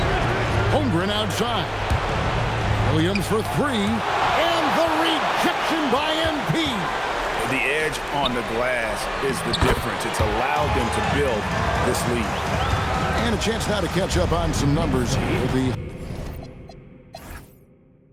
Holmgren outside. Williams for 3. And the rejection by MP. The edge on the glass is the difference. It's allowed them to build this lead. And a chance now to catch up on some numbers here. The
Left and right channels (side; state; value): both; identical; correlation 1.00